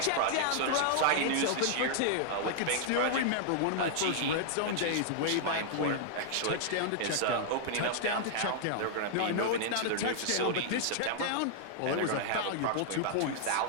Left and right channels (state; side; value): different; both; correlation -0.01